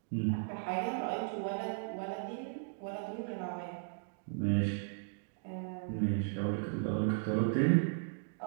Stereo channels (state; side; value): silent; left; digital silence